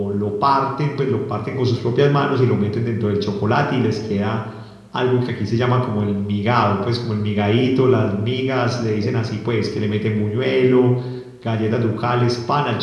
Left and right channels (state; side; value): identical; both; correlation 1.00